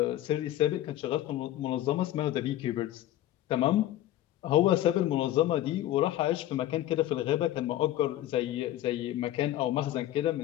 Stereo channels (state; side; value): quieter; right; 13.6 dB